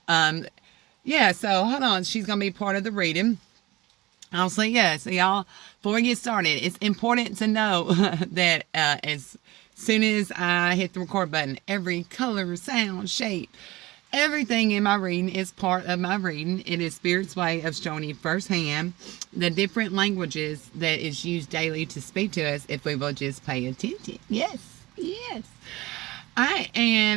Um, so hold on. She's going to be part of the reading. I'll say yes. So y'all, before we get started, it's important to know that as soon as I hit the record button, every color, sound, shape, everything in my reading is part of my reading. It is Spirit's way of showing you firsthand the different languages that is used daily to speak to us if we will just pay attention. Yes, yes. All right,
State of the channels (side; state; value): left; quieter; 19.5 dB